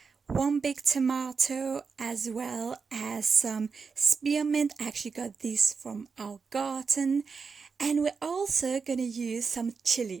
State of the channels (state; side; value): quieter; left; 5.2 dB